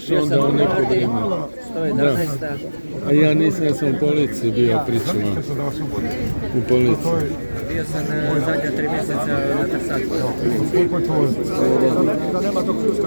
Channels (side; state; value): both; inverted; correlation -1.00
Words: onda u neko vrijeme. 111. A ja nisam, ja sam u policiji bio, pričama. U policiji. Bio sam zadnja 3 mjeseca na Trsaku.